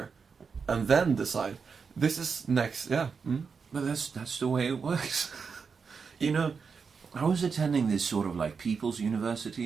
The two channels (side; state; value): left; quieter; 5.5 dB